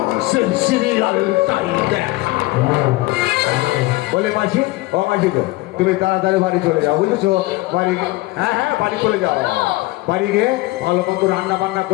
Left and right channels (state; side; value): quieter; right; 20.1 dB